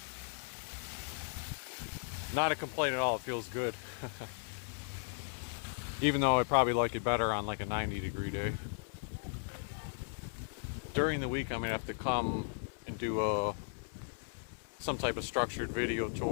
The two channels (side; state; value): right; silent; 53 dB below the other